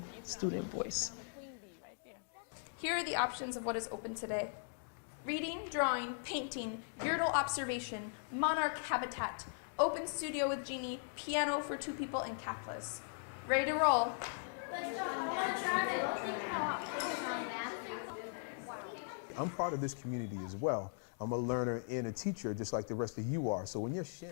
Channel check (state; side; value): silent; right; digital silence